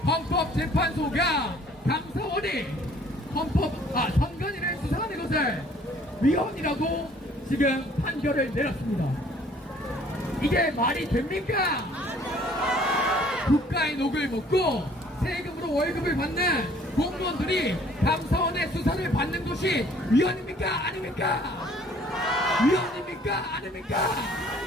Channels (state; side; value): normal; both; correlation 0.57